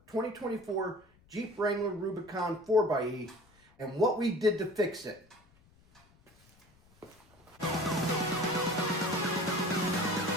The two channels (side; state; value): left; noise; rumble, 30 dB below the sound